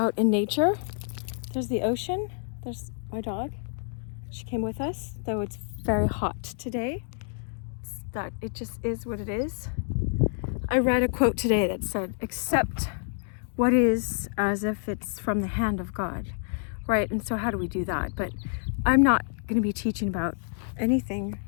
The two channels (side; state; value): right; silent; 59 dB below the other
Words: in nature. There's the ocean, there's my dog. She came with us, though it's very hot today. That it just is what it is. I read a quote today that said, accept what is as if it's from the hand of God, right? And so how do we do that? But I'm not going to be teaching about anything